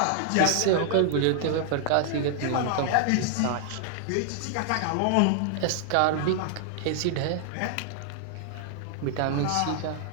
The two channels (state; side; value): different; both; correlation 0.00